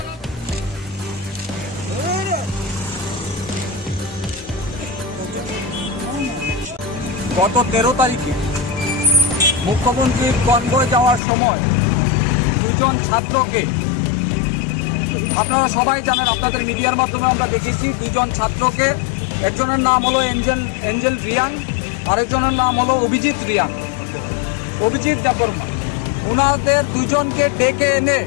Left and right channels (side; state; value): right; drops out; at 11.2 s